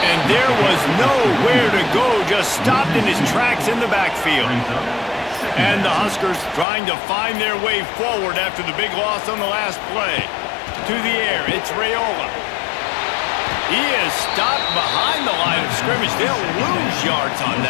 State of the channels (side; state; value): right; drops out; at 6.7 s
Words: And there was nowhere to go, just stopped in his tracks in the backfield. And the Huskers trying to find their way forward after the big loss on the last play. To the air, it's Raiola. He is stopped behind the line of scrimmage. They'll lose yards on